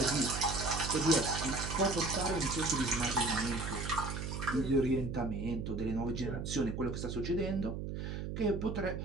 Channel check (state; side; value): noise; right; hum, 5 dB below the sound